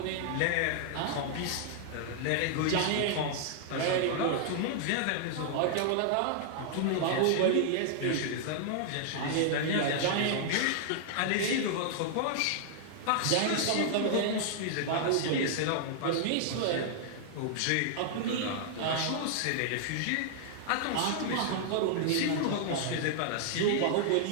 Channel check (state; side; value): different; both; correlation -0.01